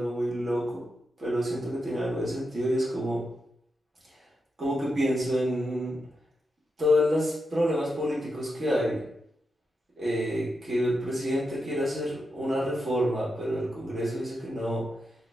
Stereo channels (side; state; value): both; normal; correlation 0.86